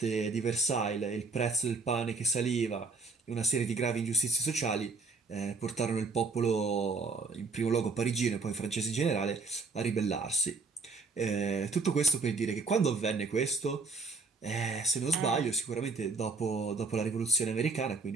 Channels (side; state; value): left; quieter; 4.1 dB